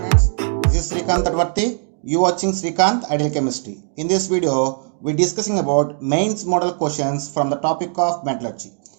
watching Srikanth Ideal Chemistry. In this video, we're discussing about mains model questions from the topic of metallurgy.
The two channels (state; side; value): silent; left; 57 dB below the other